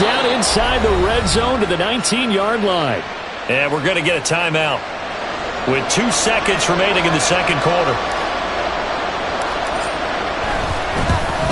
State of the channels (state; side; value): identical; both; correlation 1.00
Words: inside the red zone to the 19-yard line. And we're going to get a timeout with 2 seconds remaining in the second quarter.